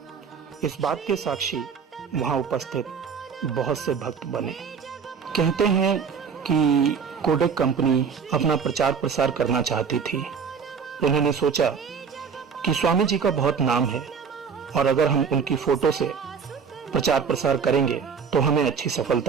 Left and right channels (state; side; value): quieter; left; 6.2 dB